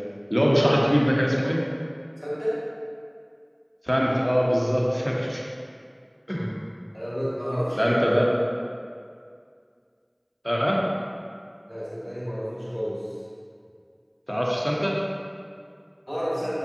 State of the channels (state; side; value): identical; both; correlation 1.00